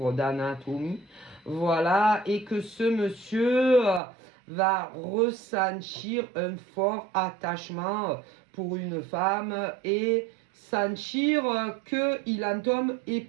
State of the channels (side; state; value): left; drops out; at 4.0 s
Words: d'anatomie, voilà, et que ce monsieur va ressentir un fort attachement pour une femme et sentir qu'il en tombe